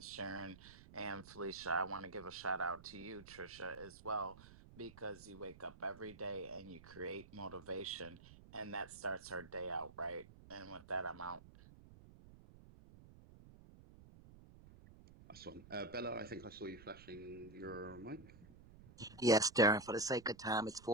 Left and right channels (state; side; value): noise; right; rumble, 19 dB below the sound